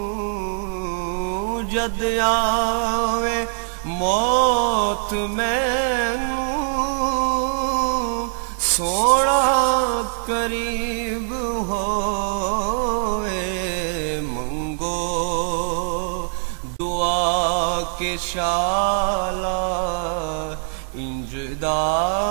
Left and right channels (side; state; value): left; silent; 64 dB below the other